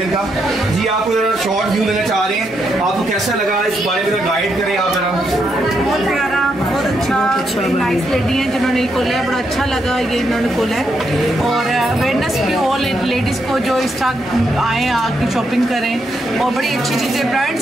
इनका। जी आप शॉर्ट व्यू लेना चाह रहे हैं, आपको कैसा लगा इस बारे में गाइड करें आप जरा। बहुत प्यारा, बहुत अच्छा, बड़ी नाइस लेडी है जिन्होंने खोला है, बड़ा अच्छा लगा ये इन्होंने खोला है। और अवेयरनेस भी ऑल लेडीज़ को जो इस तरह आए आके शॉपिंग करें, और बड़ी अच्छी चीज़ें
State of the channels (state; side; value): normal; both; correlation 0.79